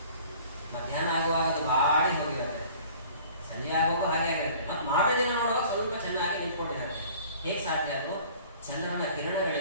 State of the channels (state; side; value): inverted; both; correlation -0.49